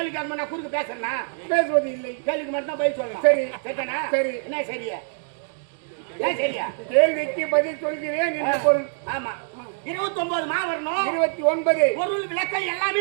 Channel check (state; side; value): silent; left; 62 dB below the other